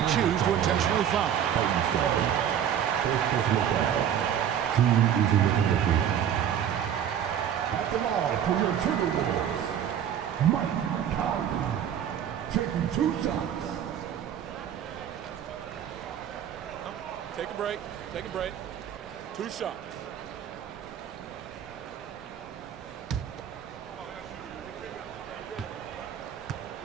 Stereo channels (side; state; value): left; quieter; 9.4 dB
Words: choose to intentionally foul. At the line for your Timberwolves, Mike Conley, taking 2 shots. Take a break. Take a break. 2 shots.